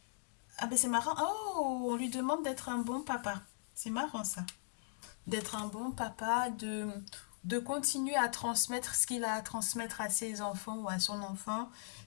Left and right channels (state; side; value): silent; right; digital silence